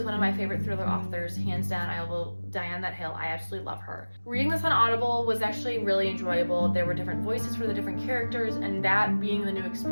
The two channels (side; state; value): both; inverted; correlation -1.00